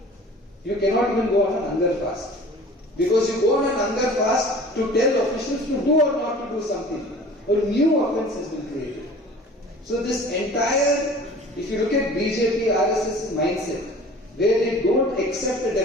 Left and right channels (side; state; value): both; normal; correlation 0.45